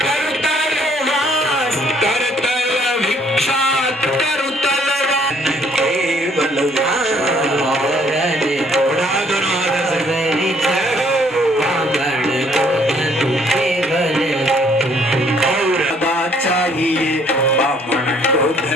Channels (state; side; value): normal; both; correlation 0.63